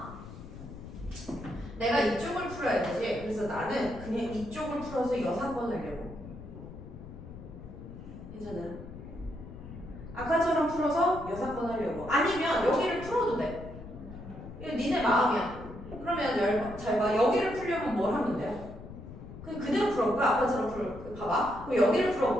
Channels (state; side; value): noise; left; rumble, 13 dB below the sound